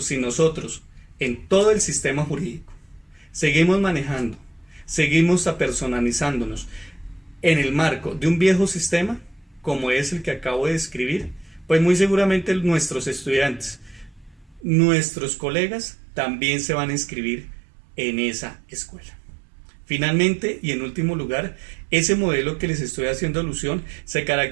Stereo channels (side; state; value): left; drops out; at 14.7 s